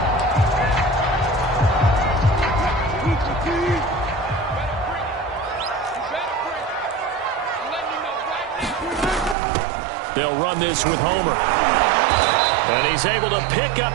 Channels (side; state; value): left; drops out; at 9.3 s